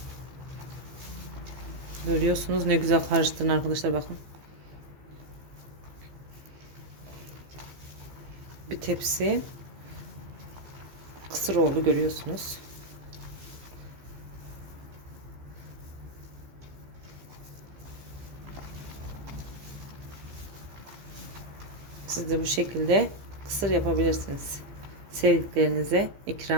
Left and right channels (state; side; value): late; left; 15 ms